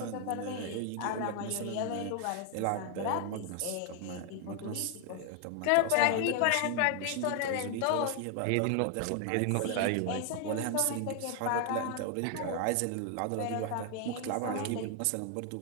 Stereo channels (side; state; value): both; different; correlation 0.00